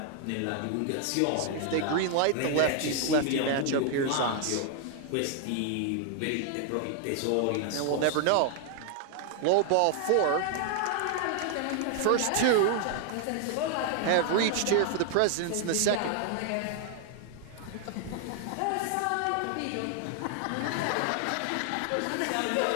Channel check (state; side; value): different; both; correlation 0.00